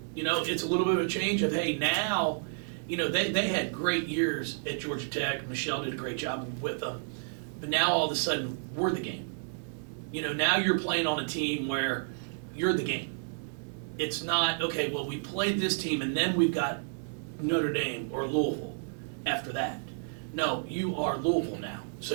You know, it's a little bit of a change of, hey, now, you know, they had great years at Georgia Tech. Michelle did a great job with them. But now all of a sudden, we're the game. You know, now you're playing on a team where you're the game. It's not, okay, well, we played this team and then we've got Notre Dame or Louisville after that. No, you are Louisville now. So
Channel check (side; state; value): left; silent; digital silence